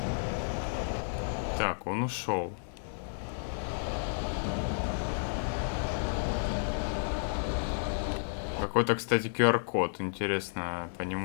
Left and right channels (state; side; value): silent; right; digital silence